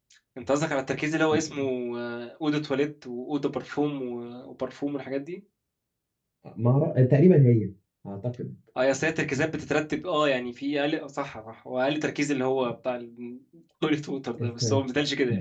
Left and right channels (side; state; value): both; identical; correlation 1.00